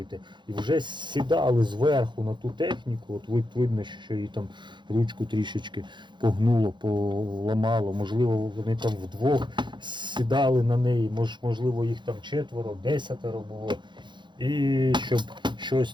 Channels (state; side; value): late; left; 0.23 ms